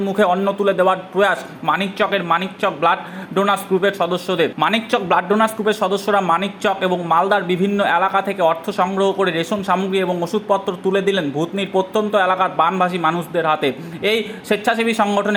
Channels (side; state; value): both; identical; correlation 1.00